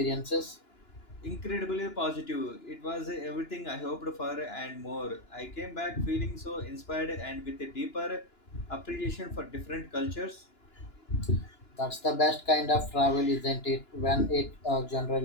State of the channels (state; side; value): late; right; 2.9 ms